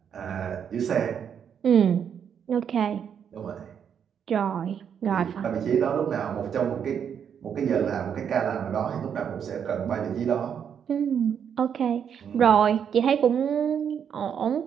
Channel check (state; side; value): quieter; left; 7.9 dB